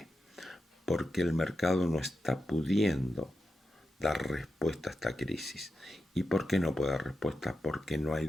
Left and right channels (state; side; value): normal; both; correlation 0.89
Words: Porque el mercado no está pudiendo dar respuesta a esta crisis. ¿Y por qué no puede dar respuesta? Porque no hay